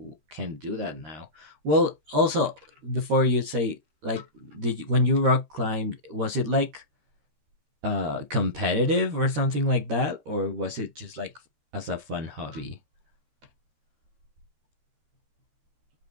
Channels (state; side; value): late; left; 13 ms